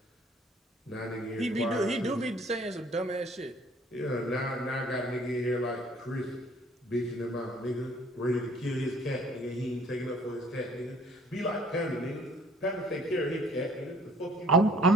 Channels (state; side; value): normal; both; correlation 0.57